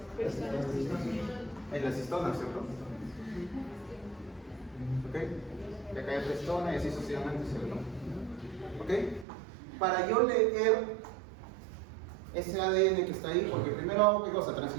En las histonas, ¿cierto? Ok, y acá hay otra histona y así sucesivamente, ¿cierto? Ok, para yo leer ese ADN que está ahí, porque primero hago ¿qué cosa?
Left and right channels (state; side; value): drops out; left; at 9.2 s